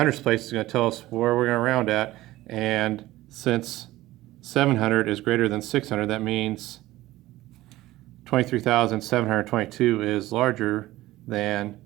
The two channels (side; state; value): left; quieter; 16.9 dB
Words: place is going to tell us where we're going to round at, and since 700 is greater than 600, that means 23,722 is larger than